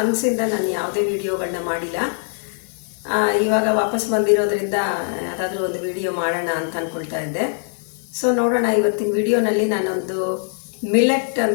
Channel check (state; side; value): silent; right; 59 dB below the other